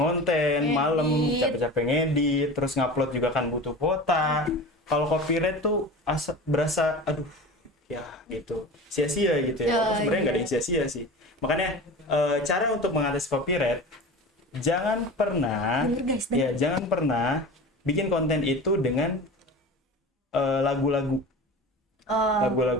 ngonten malam, Ngedit. capek-capek ngedit, terus ngupload juga kan butuh kuota. Kalau copyright tuh berasa aduh ya gitu sia-sia gitu ya. Oh, Sebenarnya nggak ada iya. yang sia-sia sih. Makanya cara untuk mengatasi copyright, jangan pernah Bener, guys, bener. ya jangan pernah bikin konten itu dengan lagu-lagu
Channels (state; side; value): normal; both; correlation 0.33